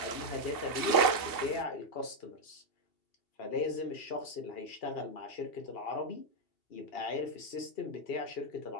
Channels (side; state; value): right; late; 2.7 ms